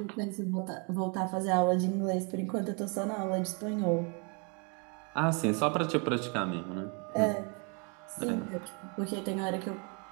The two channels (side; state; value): left; quieter; 35.3 dB